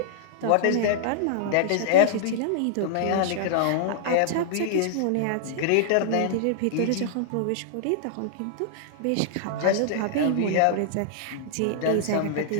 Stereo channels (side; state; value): both; different; correlation -0.01